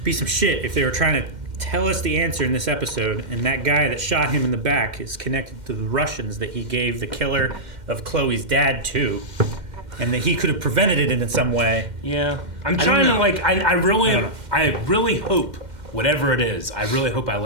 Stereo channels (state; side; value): late; left; 2.1 ms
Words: Be some shit if they were trying to tell us the answer in this episode, and that guy that shot him in the back is connected to the Russians that he gave the killer of Chloe's dad too, and that he could have prevented it in some way. Yeah, I'm trying to like. I really hope whatever it is. I really hope I